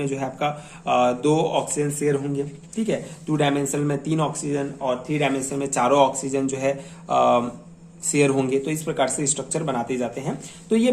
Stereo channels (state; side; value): identical; both; correlation 1.00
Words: जो है आपका 2 ऑक्सीजन शेयर होंगे, ठीक है। 2 डायमेंशनल में 3 ऑक्सीजन और 3 डायमेंशनल में 4 ऑक्सीजन जो है शेयर होंगे। तो इस प्रकार से स्ट्रक्चर बनाते जाते हैं। तो ये